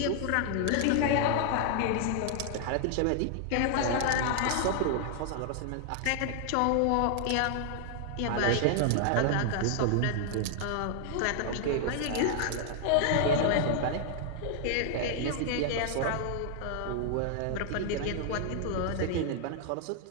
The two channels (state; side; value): different; both; correlation 0.00